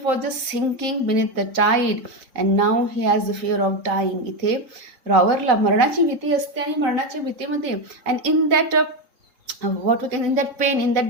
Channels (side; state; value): left; late; 3.7 ms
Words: was just sinking beneath the tide and now he has the fear of dying. इथे रॉवरला मरणाची भीती असते आणि मरणाच्या भीतीमध्ये and in that in that pain, in